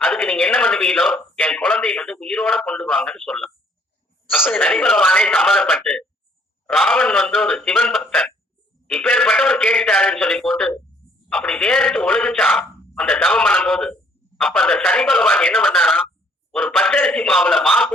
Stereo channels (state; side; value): normal; both; correlation 0.62